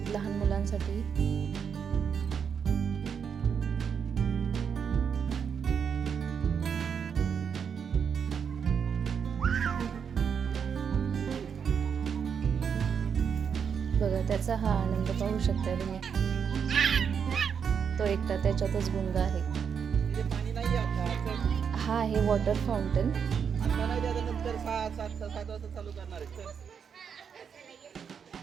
लहान मुलांसाठी। बघा, त्याचा हा आनंद पाहू शकता तुम्ही। तो एकटा त्याच्यातच गुंग आहे। हा आहे वॉटर फाउंटन।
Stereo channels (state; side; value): quieter; left; 7.0 dB